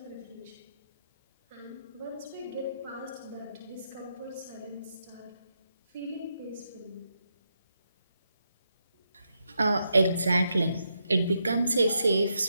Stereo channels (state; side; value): inverted; both; correlation -0.82